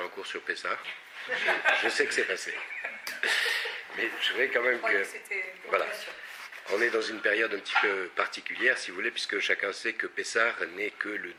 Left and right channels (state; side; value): identical; both; correlation 1.00